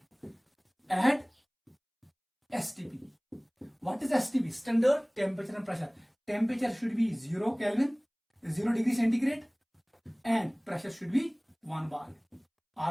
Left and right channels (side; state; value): both; identical; correlation 1.00